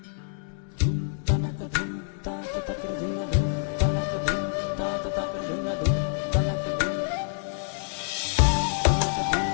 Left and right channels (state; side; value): silent; right; 60 dB below the other